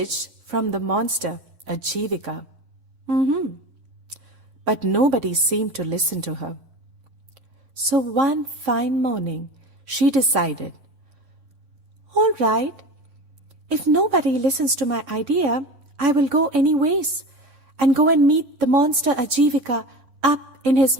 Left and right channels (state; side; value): late; left; 11 ms